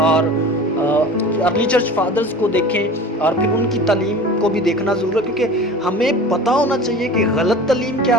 ارلی چرچ فادرز کو دیکھیں, اور پھر ان کی تعلیم کو بھی دیکھنا ضرور ہے, کیونکہ ہمیں پتہ ہونا چاہیے کہ غلط تعلیم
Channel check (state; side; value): normal; both; correlation 0.38